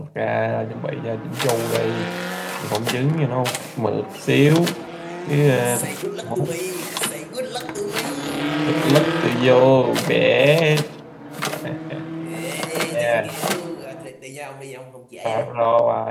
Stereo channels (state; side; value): identical; both; correlation 1.00